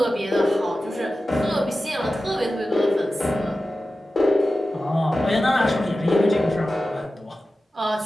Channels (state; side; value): normal; both; correlation 0.94